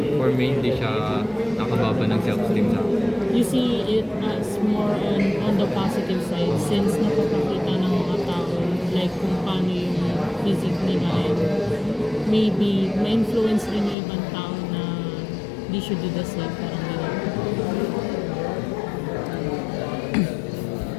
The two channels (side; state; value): right; drops out; at 14.0 s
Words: for me, hindi siya nakababa ng self-esteem sa akin. You see it as more on the positive side since napapakita ng mga tao like kung paano yung physique nila and maybe ma-influence rin yung ibang tao na they should do the same, parang gano'n.